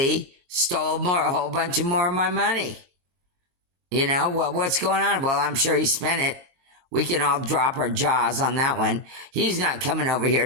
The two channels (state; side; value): late; left; 22 ms